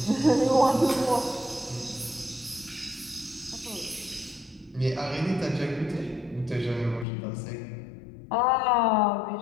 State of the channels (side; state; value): right; drops out; at 7.1 s